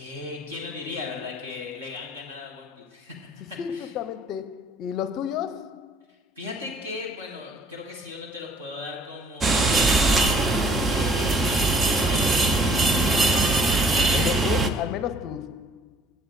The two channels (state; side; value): normal; both; correlation 0.57